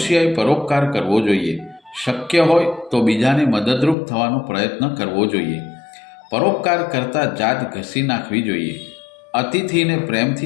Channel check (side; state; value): right; drops out; at 4.0 s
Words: પરોપકાર કરવો જોઈએ. શક્ય હોય તો બીજાને મદદરૂપ થવાનો પ્રયત્ન કરવો જોઈએ. પરોપકાર કરતાં જાત ઘસી નાખવી જોઈએ. અતિથિને